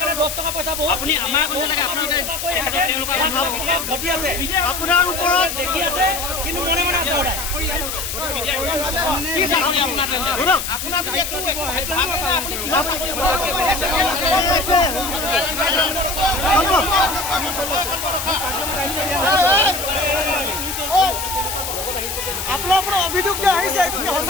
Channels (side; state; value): left; noise; hiss, 5 dB below the sound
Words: আপুনি আমাৰ কথা লাগে আপোনাৰ ওপৰত দেখি আছে কিন্তু মনে মনে আছে আপোনাৰ আপোনাৰ ওপৰত অভিযোগ যে আহিছে এইটো কি